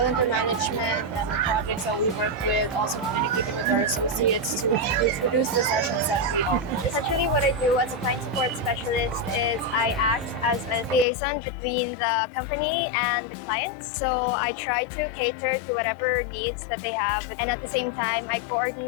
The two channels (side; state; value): right; drops out; at 11.1 s